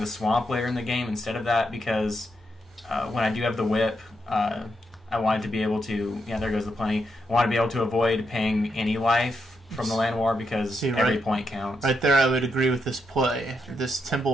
Swamp later in the game instead of that because when I do have the Whip, I wanted to be able to, yeah, there goes the plenty. I want to be able to avoid paying any life from the Land War because every point counts. Right there, I would agree with this play. This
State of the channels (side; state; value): both; normal; correlation 0.82